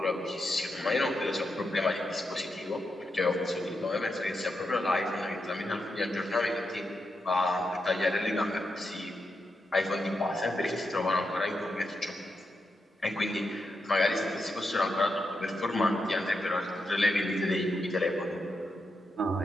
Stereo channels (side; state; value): both; normal; correlation 0.85